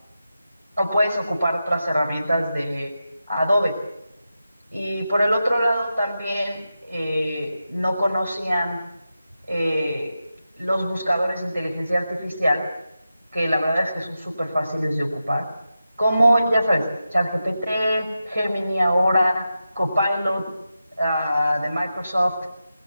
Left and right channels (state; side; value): inverted; both; correlation -0.91